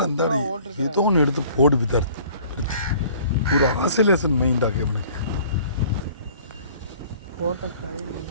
அந்த ஏதோ ஒன்று எடுத்து போடு விதார்த்து. ஒரு ஆசிலேஷன் மைண்டாக எனக்கு.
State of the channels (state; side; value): inverted; both; correlation -0.51